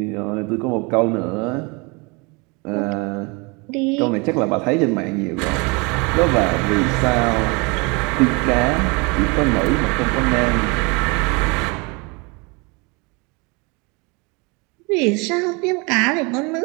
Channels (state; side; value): quieter; left; 29.1 dB